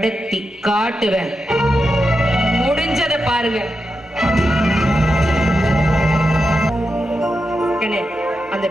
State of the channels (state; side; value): normal; both; correlation 0.88